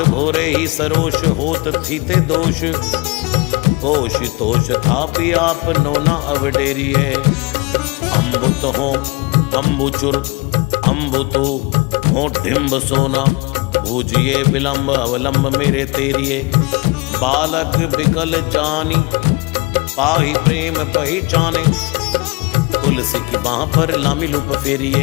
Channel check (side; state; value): right; quieter; 25.3 dB